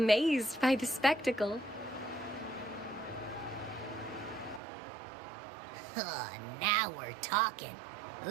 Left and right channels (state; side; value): drops out; left; at 4.6 s